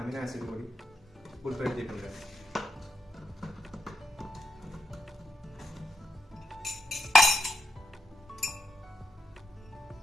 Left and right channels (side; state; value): both; normal; correlation 0.82